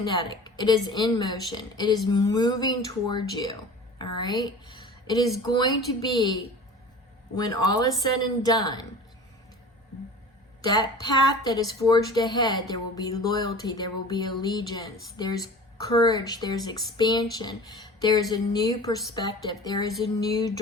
it is in motion, it is moving towards you, all right? It is going to be, when all is said and done, that path that is forged ahead, there will be loyalty, there will be allegiance, there's courage, there's expansion, there's a new perspective, there is a new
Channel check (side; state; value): both; normal; correlation 0.40